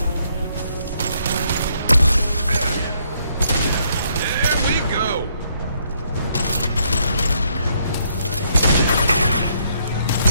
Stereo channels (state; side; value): inverted; both; correlation -0.71